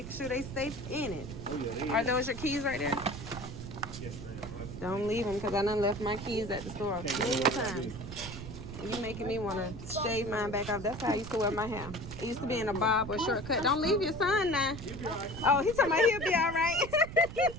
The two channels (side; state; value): right; noise; rumble, 10 dB below the sound